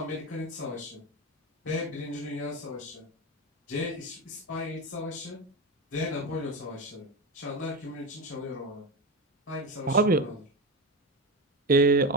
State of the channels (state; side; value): normal; both; correlation 0.18